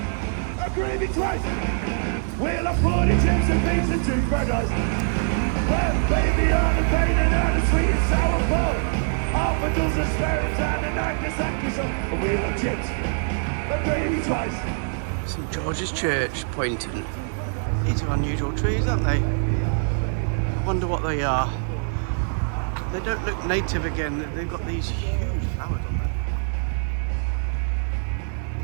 A gravy twice. Well, I put it chips and beans and 2 fried rice. But baby, on a painted and a sweet and sour pork. All the girls are sparing time and Nagasaki so. Oh, well, I'm chips. A gravy twice. St George's Church, Poynton. These are unusual trees, aren't they? I wonder what they are. They don't look native again. They've got these huge flowers on them.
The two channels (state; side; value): silent; left; 63 dB below the other